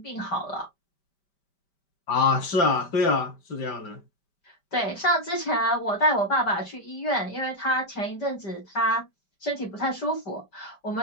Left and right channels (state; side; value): late; right; 5.1 ms